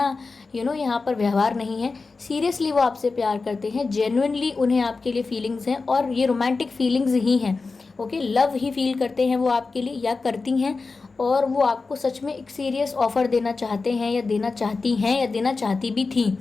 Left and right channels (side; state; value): right; quieter; 4.1 dB